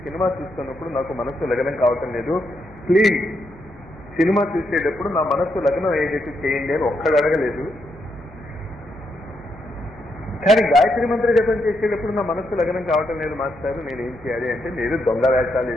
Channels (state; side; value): normal; both; correlation 0.79